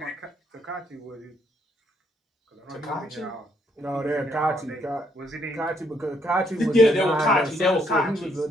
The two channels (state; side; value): normal; both; correlation 0.72